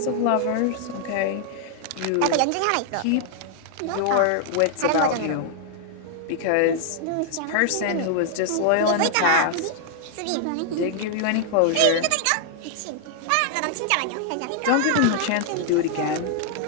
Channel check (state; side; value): different; both; correlation -0.01